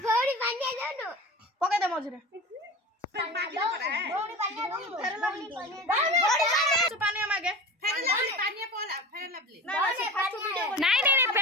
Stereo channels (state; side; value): normal; both; correlation 0.33